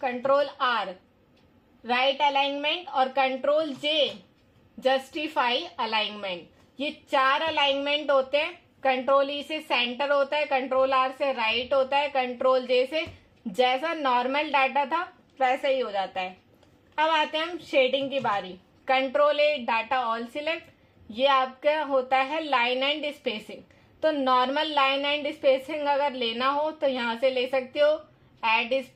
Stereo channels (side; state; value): both; identical; correlation 1.00